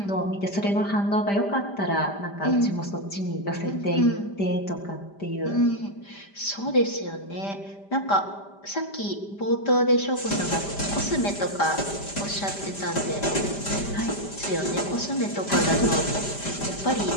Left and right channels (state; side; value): late; right; 5.0 ms